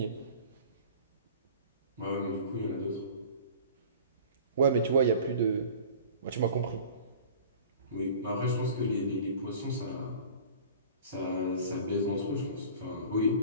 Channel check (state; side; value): inverted; both; correlation -0.42